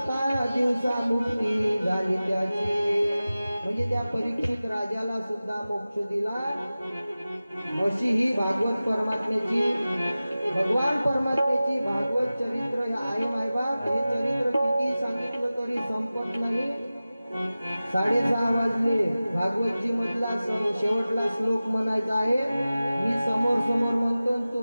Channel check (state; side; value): inverted; both; correlation -0.96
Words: दिवसा मुक्ती झाली त्याची. म्हणजे त्या परीक्षित राजाला सुद्धा मोक्ष दिला. अशी ही भागवत परमात्म्याची, भगवान परमात्म्याची भागवत चरित्र आहे मायबाप. हे चरित्र किती सांगितलं तरी संपत नाही. 6:30 वाजले. भागवतजी मधला शेवटला श्लोक म्हणायचा आहे. मी समोर समोर म्हणतो,